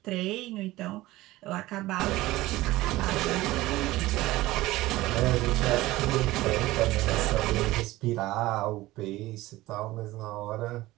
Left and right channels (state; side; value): quieter; left; 18.0 dB